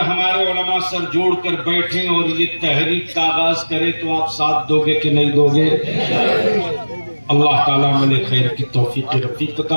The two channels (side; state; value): both; inverted; correlation -1.00